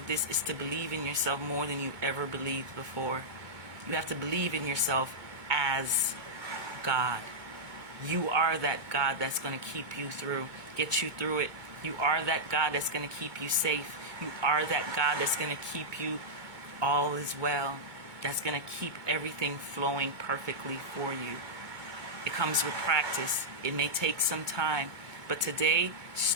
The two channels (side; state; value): left; late; 2.2 ms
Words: this is to believe in yourself more than you ever believed before. You have to believe in yourself as God. You are that God that's going to keep you through, get you through it. You are that God that's going to keep you safe. You are that God that's going to keep you all is well. That's going to keep everything flowing perfectly for you. It comes with practice. It may take some time, But today,